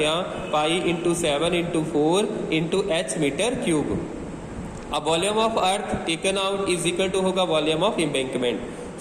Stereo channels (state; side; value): identical; both; correlation 1.00